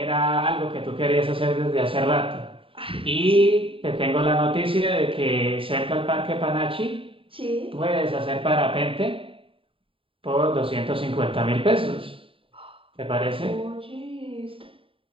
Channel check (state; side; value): late; left; 0.26 ms